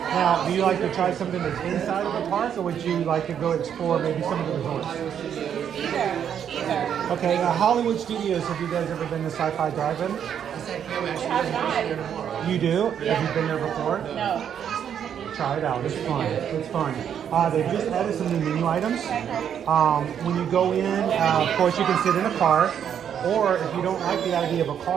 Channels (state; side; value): quieter; left; 8.7 dB